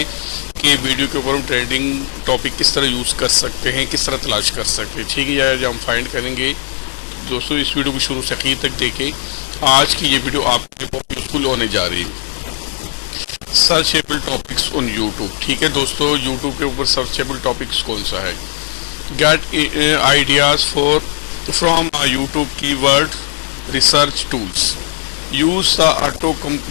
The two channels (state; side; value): silent; right; 68 dB below the other